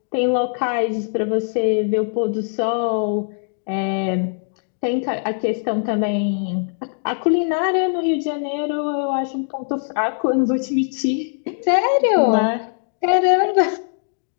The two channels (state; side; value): silent; right; digital silence